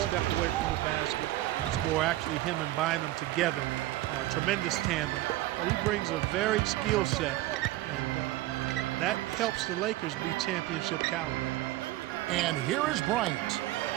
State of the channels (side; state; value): left; quieter; 16.7 dB